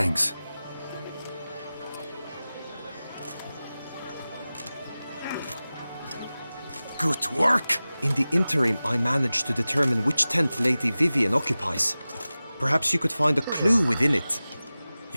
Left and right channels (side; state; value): both; inverted; correlation -0.97